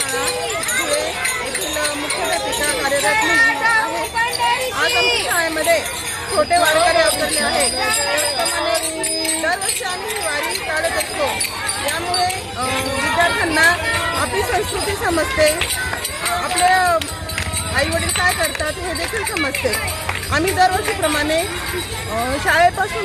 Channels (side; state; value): both; identical; correlation 1.00